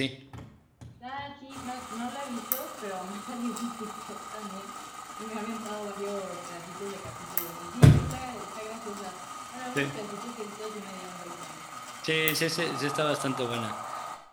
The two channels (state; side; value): identical; both; correlation 1.00